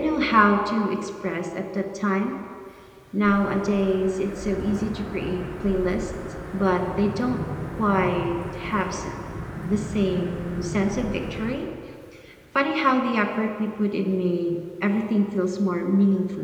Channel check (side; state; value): both; identical; correlation 1.00